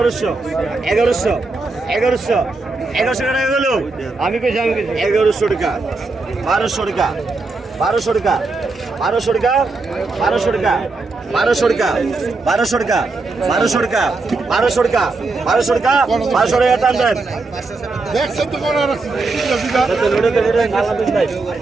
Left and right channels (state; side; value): quieter; left; 3.7 dB